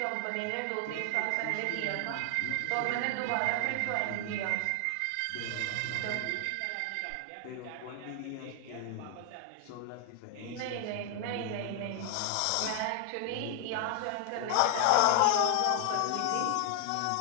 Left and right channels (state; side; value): different; both; correlation 0.00